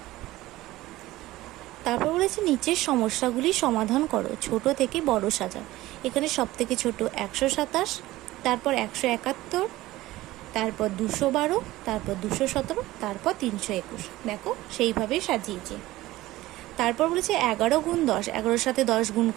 তারপর বলেছে নিচের সমস্যাগুলি সমাধান করো, ছোট থেকে বড় সাজাও। এখানে সব থেকে ছোট 127, তারপর 171, তারপর 212, তারপর 217, তারপর 321। দেখো সেইভাবেই সাজিয়েছে। তারপর বলেছে 11 গুণ 10, 11-এর সাথে 10 গুণ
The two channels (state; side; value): quieter; left; 17.2 dB